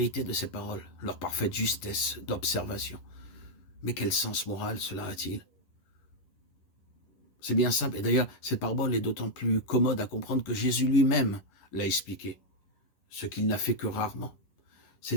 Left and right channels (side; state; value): right; late; 11 ms